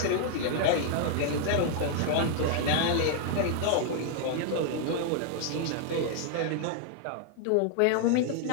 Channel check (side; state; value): both; different; correlation 0.00